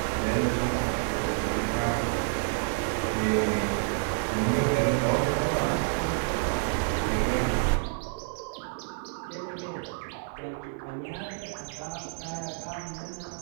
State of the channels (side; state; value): left; silent; digital silence